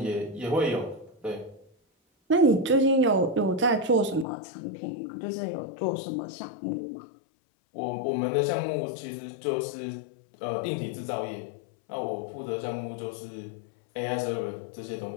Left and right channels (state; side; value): drops out; right; at 4.2 s